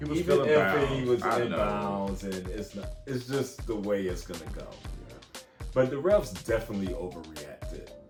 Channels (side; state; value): both; identical; correlation 1.00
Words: was Even still if inbounds. he was I in know. bounds, and it's just the way it's gonna go. But the refs definitely overreacted